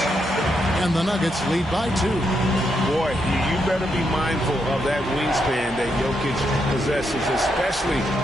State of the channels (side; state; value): both; normal; correlation 0.80